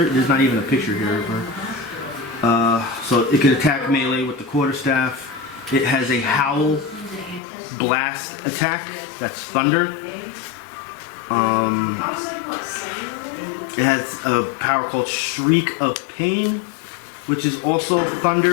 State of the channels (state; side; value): drops out; right; at 7.4 s